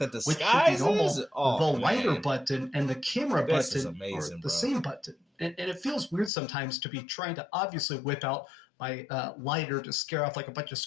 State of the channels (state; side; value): drops out; right; at 6.3 s